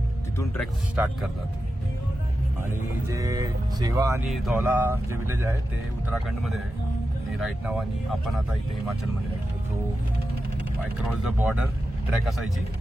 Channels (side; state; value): both; normal; correlation 0.91